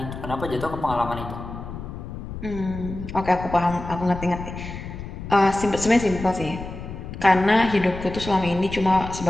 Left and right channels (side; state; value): left; noise; rumble, 10 dB below the sound